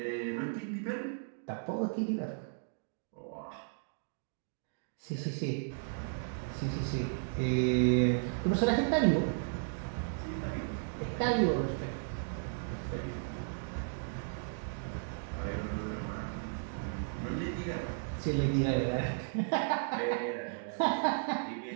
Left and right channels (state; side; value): silent; left; digital silence